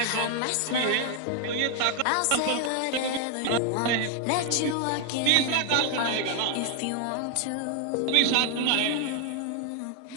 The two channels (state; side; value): different; both; correlation 0.00